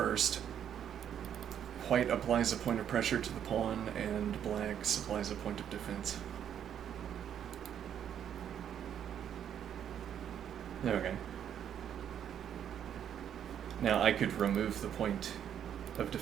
White applies a point of pressure to the pawn, and black supplies a point of defense. Okay. Now I could remove the point of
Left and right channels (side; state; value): left; quieter; 9.3 dB